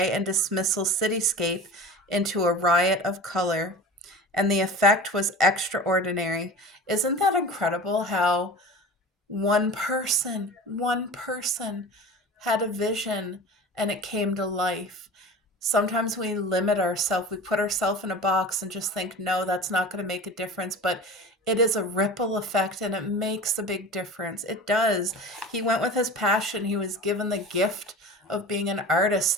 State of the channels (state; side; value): normal; both; correlation 0.35